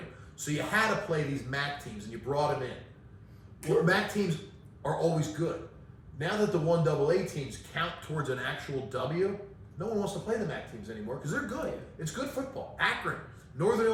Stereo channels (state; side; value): identical; both; correlation 1.00